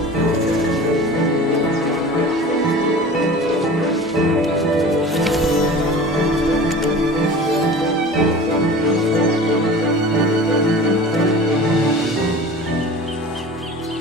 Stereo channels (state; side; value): normal; both; correlation 0.39